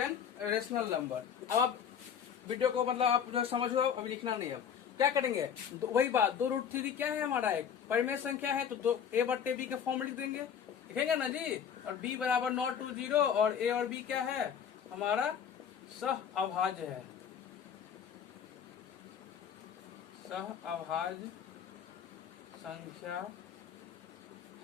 rational number. अब आप वीडियो को मतलब आप जो समझो, अभी लिखना नहीं। अब क्या करेंगे, वही बात, 2 रूट 3 क्या है हमारा, एक परिमेय संख्या है, तो a बट्टे b के फॉर्म में लिख देंगे, लिखेंगे ना जी। और b बराबर नॉट टू 0, और a और b क्या है, हमारा सह अभाज्य है, सह अभाज्य संख्या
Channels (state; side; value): quieter; right; 8.0 dB